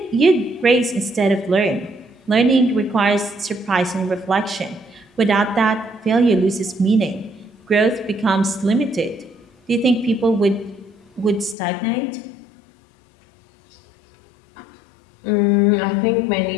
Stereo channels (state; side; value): drops out; right; at 11.6 s